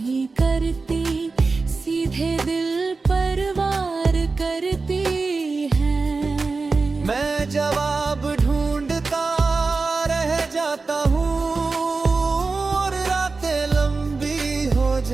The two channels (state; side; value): quieter; left; 4.0 dB